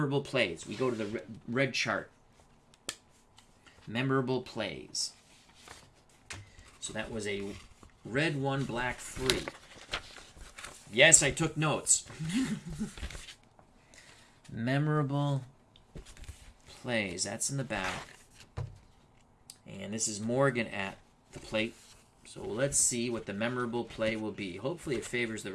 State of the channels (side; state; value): both; identical; correlation 1.00